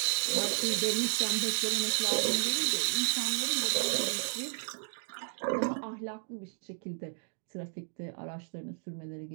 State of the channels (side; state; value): left; silent; digital silence